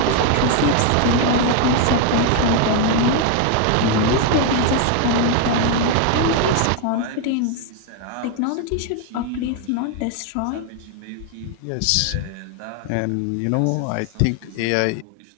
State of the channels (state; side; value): different; both; correlation 0.01